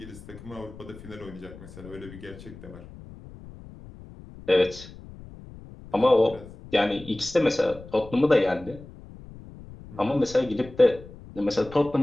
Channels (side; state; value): left; noise; rumble, 17 dB below the sound